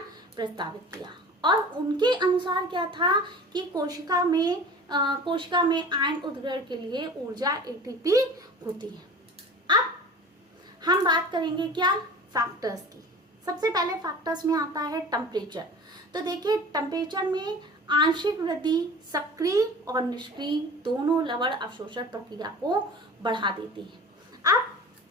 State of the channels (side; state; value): both; normal; correlation 0.39